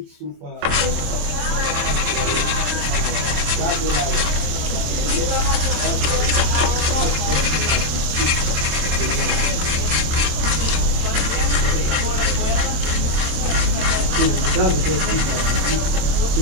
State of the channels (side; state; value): left; late; 27 ms